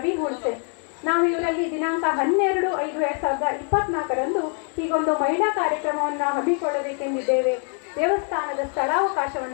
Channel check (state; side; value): quieter; right; 38.1 dB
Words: ಹುಣಸೆ ನಾವು ಇವರಲ್ಲಿ ದಿನಾಂಕ 12/5/2024 ಹೀಗೊಂದು ಮಹಿಳಾ ಕಾರ್ಯಕ್ರಮವನ್ನು ಹಮ್ಮಿಕೊಳ್ಳಬೇಕೆಂದಿದ್ದೇವೆ. ದೇವಸ್ಥಾನದ